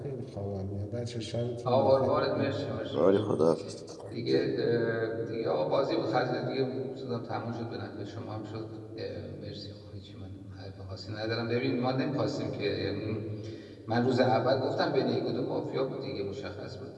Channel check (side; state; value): both; identical; correlation 1.00